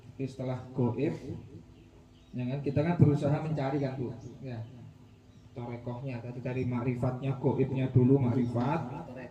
Setelah goib, ya kan kita kan berusaha mencari kan Bu, ya torekohnya tadi dari makrifatnya, goibnya dulu makrifat,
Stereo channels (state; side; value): identical; both; correlation 1.00